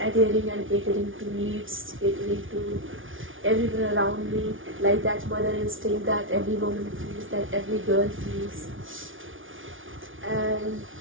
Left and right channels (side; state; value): left; late; 0.57 ms